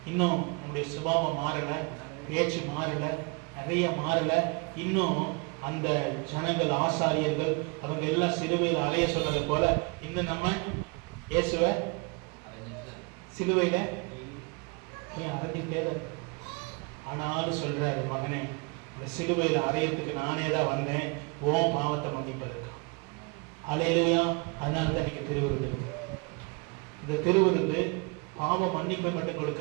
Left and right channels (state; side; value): quieter; left; 31.1 dB